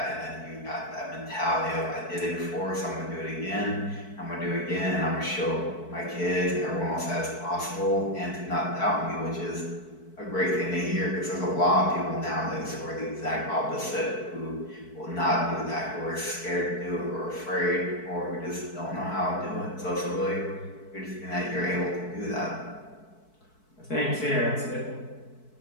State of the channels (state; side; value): late; right; 4.6 ms